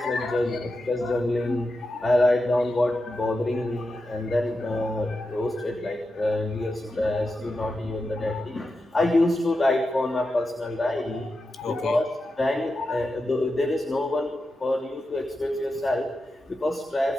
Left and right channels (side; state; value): both; normal; correlation 0.89